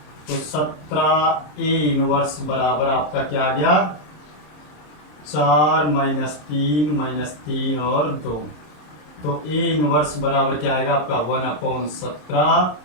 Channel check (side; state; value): right; late; 26 ms